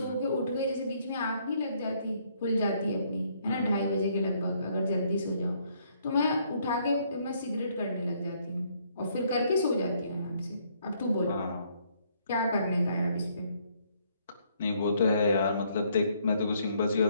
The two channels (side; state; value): both; inverted; correlation -0.68